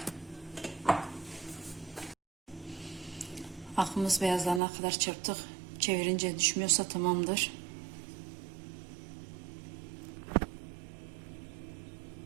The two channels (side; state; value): left; drops out; at 4.6 s